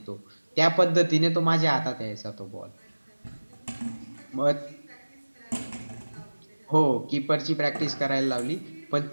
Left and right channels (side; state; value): both; inverted; correlation -1.00